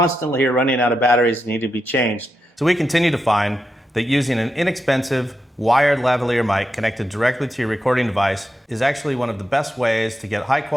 are running out of batteries and need to be changed. So we continue to find that using an inexpensive wired lavalier mic connected directly to your recording device is actually one of the best ways to get high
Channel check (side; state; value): both; normal; correlation 0.86